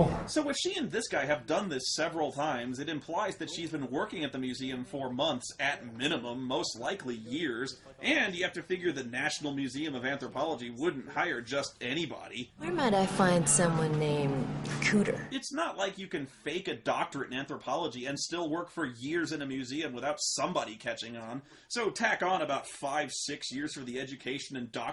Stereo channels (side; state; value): both; identical; correlation 1.00